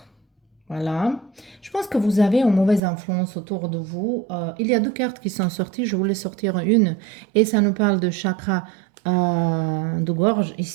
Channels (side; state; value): left; drops out; at 2.8 s